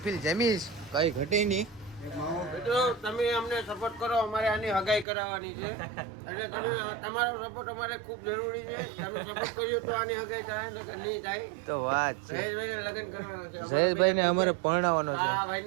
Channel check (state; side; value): drops out; left; at 5.1 s